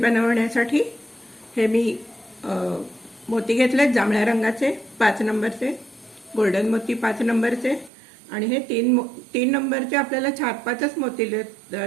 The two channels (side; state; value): left; drops out; at 7.9 s